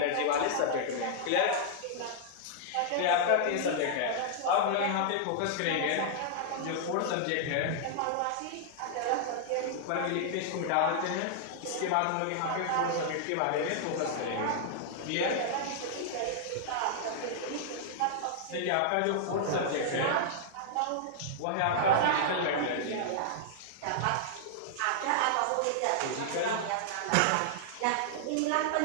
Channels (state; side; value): different; both; correlation -0.01